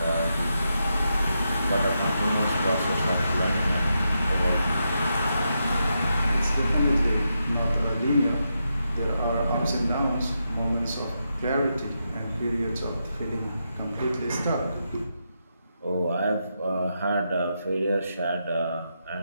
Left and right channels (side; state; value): both; inverted; correlation -0.85